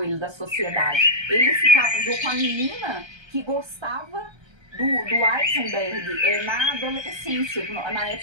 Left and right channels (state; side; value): late; left; 1.3 ms